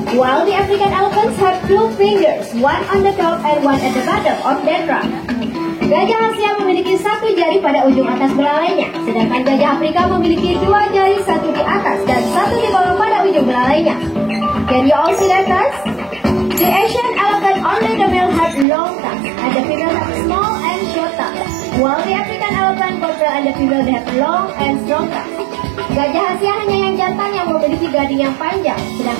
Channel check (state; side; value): drops out; left; at 18.7 s